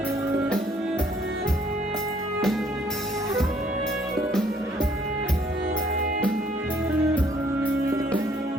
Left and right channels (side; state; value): both; normal; correlation 0.63